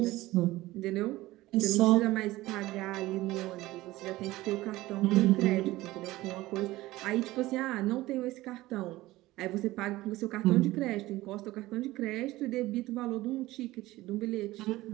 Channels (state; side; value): quieter; left; 17.8 dB